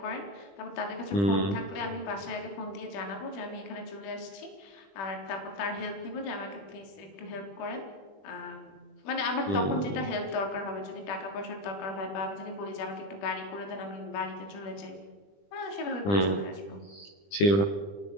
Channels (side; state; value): right; late; 20 ms